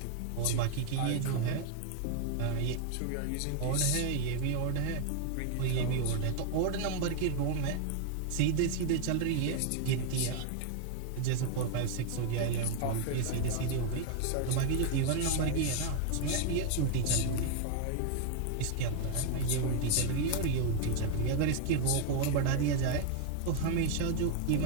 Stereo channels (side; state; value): both; different; correlation 0.00